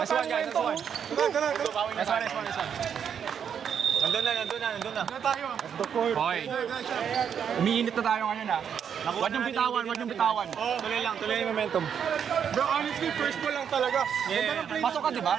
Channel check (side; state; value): left; quieter; 7.9 dB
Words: Nice tayo one, guys. momento. Nice one. Nandun na. Okay. Umiinit na tayo ngayon ha. Huwag niyong bitawan. Tuloy yung momentum. Bro, honestly, first ball lang talaga. Yeah. Pasok ka, di